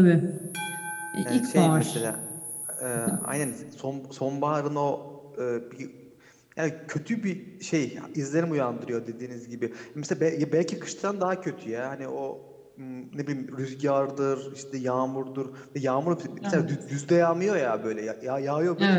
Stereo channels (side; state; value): both; identical; correlation 1.00